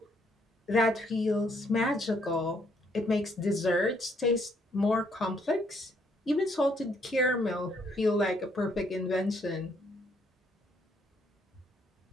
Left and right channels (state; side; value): normal; both; correlation 0.70